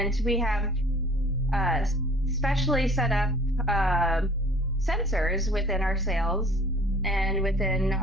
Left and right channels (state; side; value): normal; both; correlation 0.51